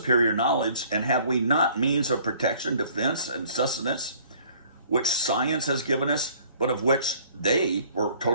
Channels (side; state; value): both; inverted; correlation -0.56